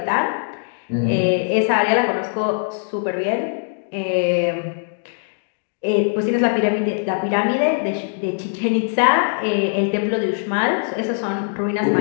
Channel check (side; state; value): right; silent; digital silence